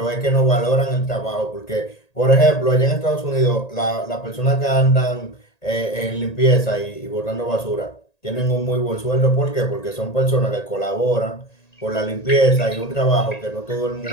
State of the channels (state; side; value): late; right; 1.8 ms